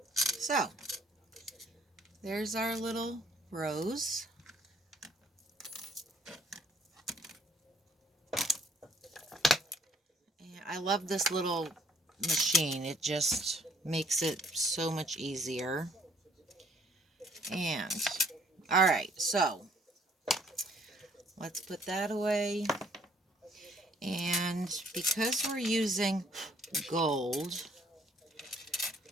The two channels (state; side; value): normal; both; correlation 0.62